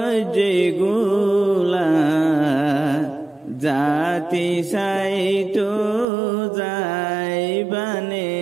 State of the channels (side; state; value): left; drops out; at 6.1 s